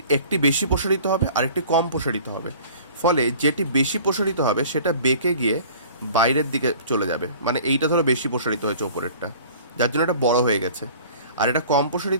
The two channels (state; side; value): inverted; both; correlation -0.47